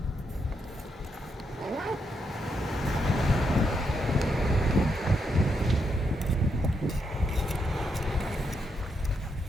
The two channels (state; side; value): normal; both; correlation 0.80